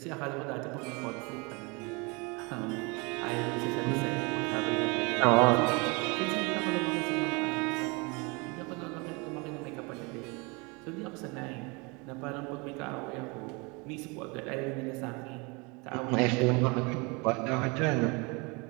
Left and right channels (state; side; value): quieter; left; 28.8 dB